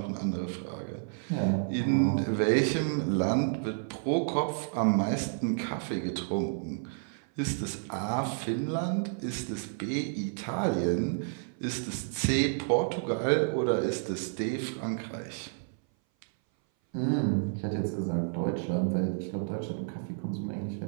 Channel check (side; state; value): left; silent; 57 dB below the other